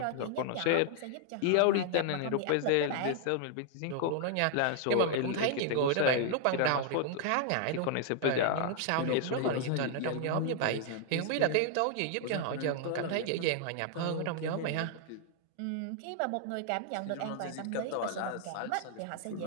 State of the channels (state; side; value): different; both; correlation 0.00